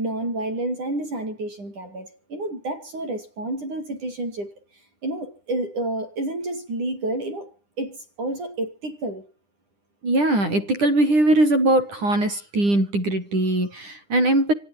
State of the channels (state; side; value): late; left; 10 ms